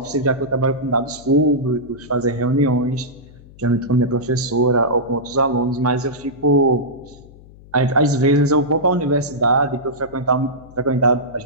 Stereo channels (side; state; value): left; noise; hum, 22 dB below the sound